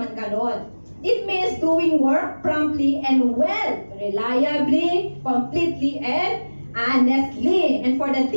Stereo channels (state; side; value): inverted; both; correlation -1.00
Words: ganon. It means doing work promptly and well, reliably, completely, and honestly. And for the